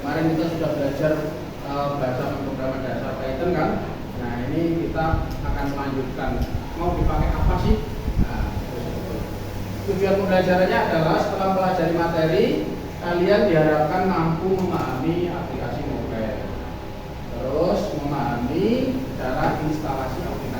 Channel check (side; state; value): both; identical; correlation 1.00